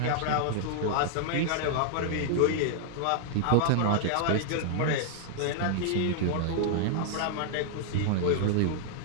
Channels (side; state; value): both; different; correlation 0.00